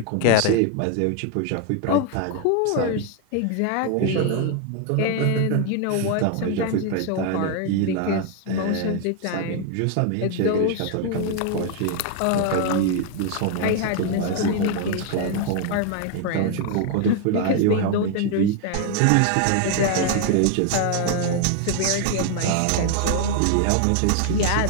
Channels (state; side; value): different; both; correlation 0.01